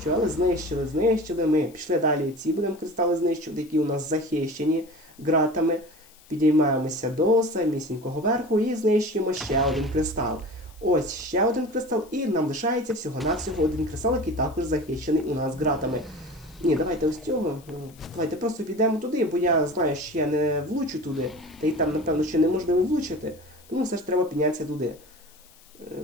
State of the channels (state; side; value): noise; left; hiss, 26 dB below the sound